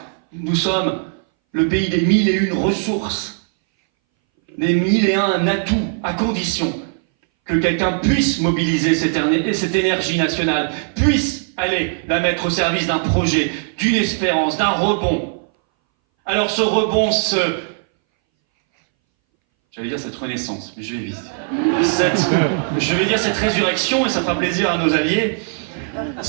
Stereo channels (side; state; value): left; silent; 62 dB below the other